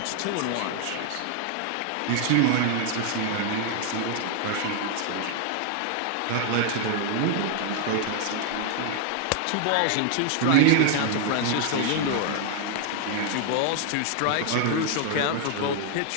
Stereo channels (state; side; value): different; both; correlation 0.00